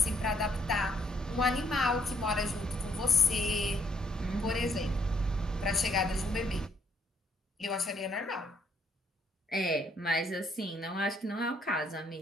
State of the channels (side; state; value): both; normal; correlation 0.69